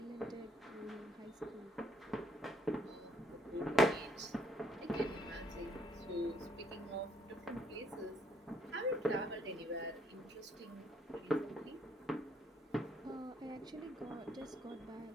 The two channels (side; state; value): both; normal; correlation 0.69